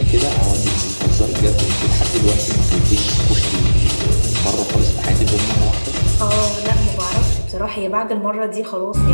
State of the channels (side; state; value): both; inverted; correlation -1.00